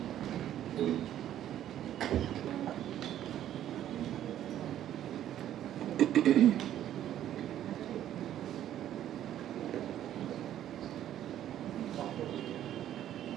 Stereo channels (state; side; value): quieter; left; 11.5 dB